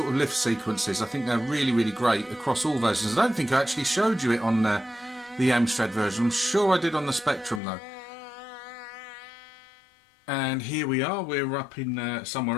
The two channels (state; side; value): drops out; right; at 7.6 s